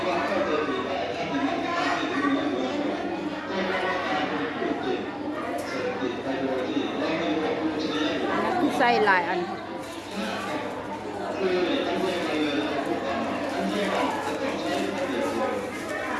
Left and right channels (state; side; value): identical; both; correlation 1.00